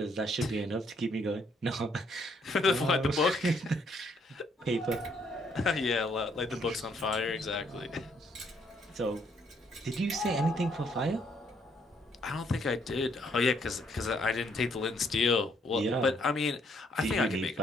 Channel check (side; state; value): both; normal; correlation 0.69